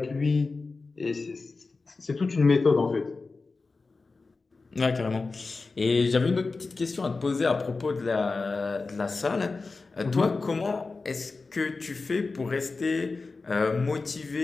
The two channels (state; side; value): quieter; right; 3.9 dB